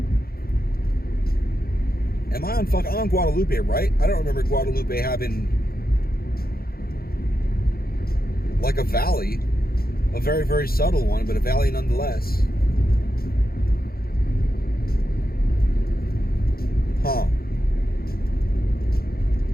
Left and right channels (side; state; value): right; late; 0.44 ms